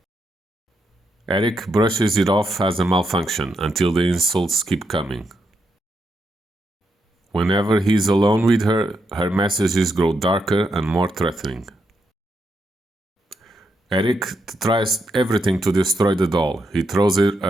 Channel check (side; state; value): both; normal; correlation 0.81